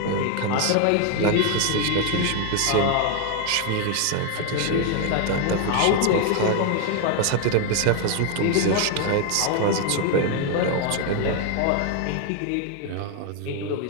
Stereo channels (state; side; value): different; both; correlation 0.01